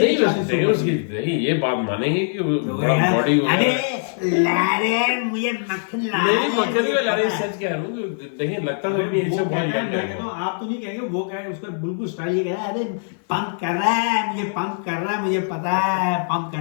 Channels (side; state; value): right; silent; 55 dB below the other